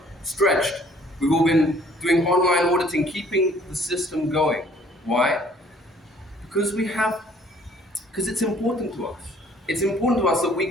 stretched. We've all been doing online auditing, keeping the system going. Why? Because it's important to us. It's important to us that we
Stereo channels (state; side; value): normal; both; correlation 0.58